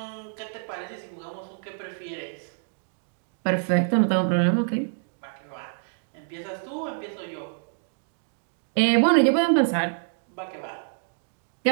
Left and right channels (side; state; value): left; silent; digital silence